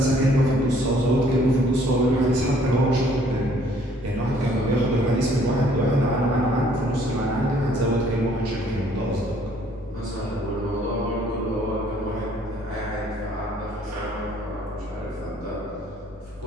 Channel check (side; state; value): right; noise; hum, 27 dB below the sound